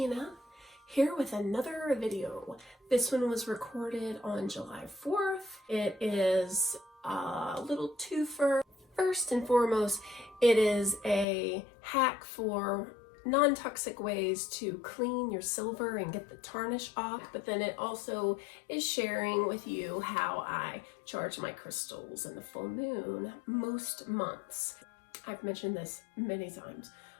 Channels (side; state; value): right; drops out; at 11.2 s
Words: here with another video. This one was recorded on July 4th. It is a little twofer. First and foremost, it is a hack for non-toxic ways to clean your silver and get the tarnish off, but then it also is sharing with you how I charge my crystals in the full moon most months. I've mentioned this many times,